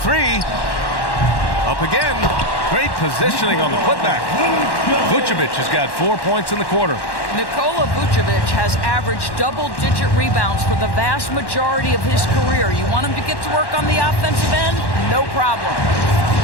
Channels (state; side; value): late; right; 1.1 ms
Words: Up again. Great positioning on the putback. Vucevic has got 4 points in the quarter. Nikola Vucevic has averaged double-digit rebounds for the vast majority of his career. You want him to get to work on the offensive end? No problem.